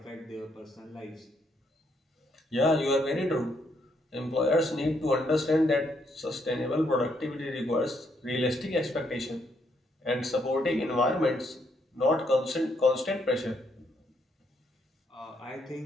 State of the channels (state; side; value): normal; both; correlation 0.74